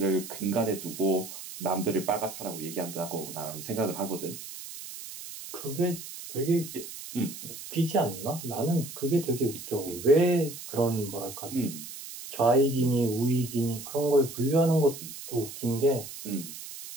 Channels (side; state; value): right; noise; hiss, 11 dB below the sound